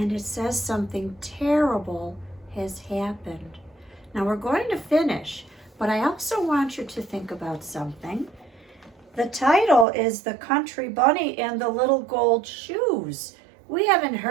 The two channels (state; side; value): drops out; left; at 9.9 s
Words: it says something terrible has happened. Now we're going to finish, but I also want you to think about something. The title is The Country Bunny and the Little Gold Shoes. We haven't